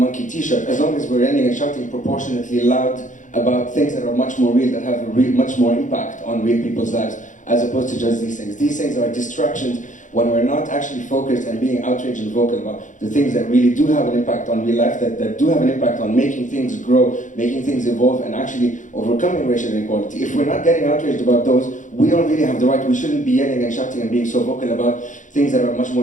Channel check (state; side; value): late; right; 0.37 ms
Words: t-shirt as long as we're yelling and shouting proportionately loud about things that are much more real, that have much more impact on real people's lives, as opposed to just these things. These things are distractions when we're not actually focused and being outraged and vocal about the things that really do have an impact on real life, that do have an impact on making things grow, making things evolve, and actually overcoming racial inequality. If we're not getting outraged about those, we don't really have the right. We shouldn't be yelling and shouting and being so vocal about things that are much